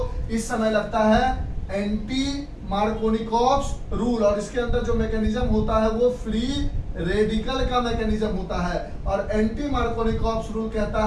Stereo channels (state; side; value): identical; both; correlation 1.00